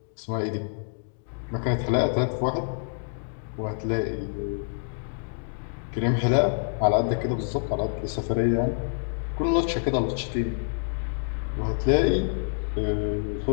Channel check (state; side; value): silent; right; digital silence